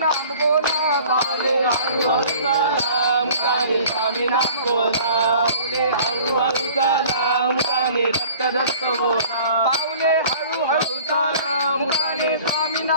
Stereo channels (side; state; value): both; inverted; correlation -0.49